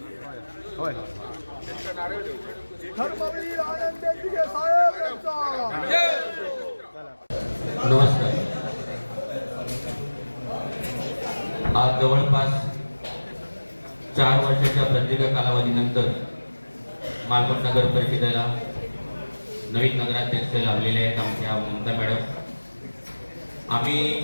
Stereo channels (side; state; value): both; inverted; correlation -1.00